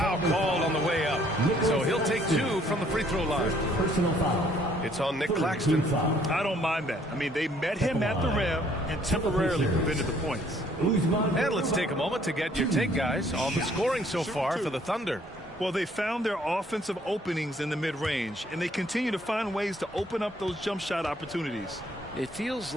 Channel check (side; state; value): both; normal; correlation 0.63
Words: called on the way up. So he'll take 2 from the free throw line. Personal foul. It's on Nick Claxton. I don't mind that. I mean, they met him at the rim and temporarily prevented the points. And let's take a moment to get your take, guys, on the scoring so far for the Thunder. Well, they found their offensive openings in the mid-range, and they continue to find ways to open up those jump shot opportunities. It feels